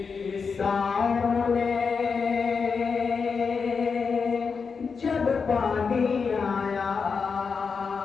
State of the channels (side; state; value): right; quieter; 5.4 dB